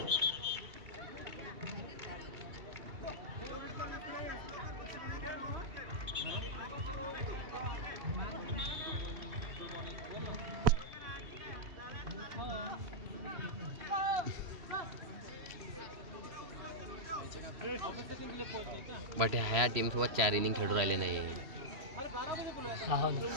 बट ह्या टीम सोबत 4 इनिंग खेळून राहिले नाही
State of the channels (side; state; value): left; late; 3.1 ms